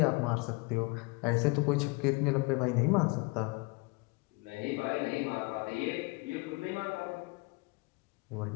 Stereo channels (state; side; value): quieter; right; 27.2 dB